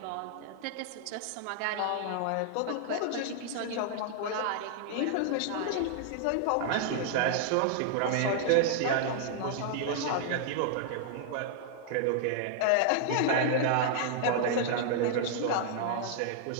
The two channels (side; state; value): both; different; correlation -0.01